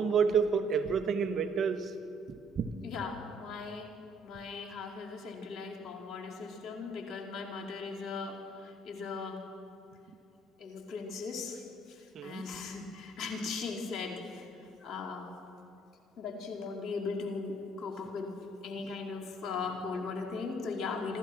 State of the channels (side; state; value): both; normal; correlation 0.63